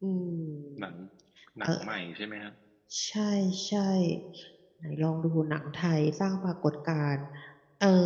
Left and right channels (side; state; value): both; identical; correlation 1.00